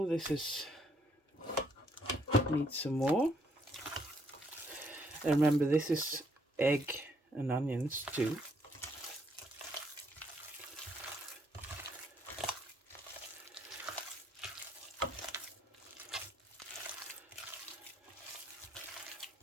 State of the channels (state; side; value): normal; both; correlation 0.70